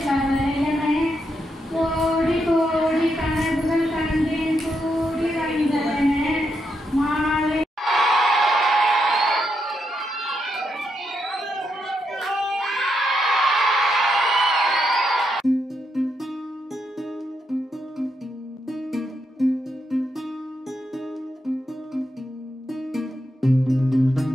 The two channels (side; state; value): both; normal; correlation 0.81